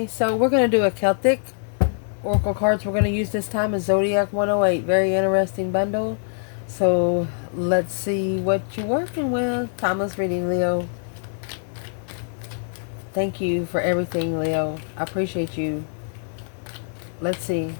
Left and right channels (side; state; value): right; silent; digital silence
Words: So we're going to do a Celtic Oracle cards we're going to use this time is Zodiac 108. Very interesting bundle. So let's see what you're working with. Timeless reading, Leo. Thank you for everything, Leo. I appreciate you. Let's see.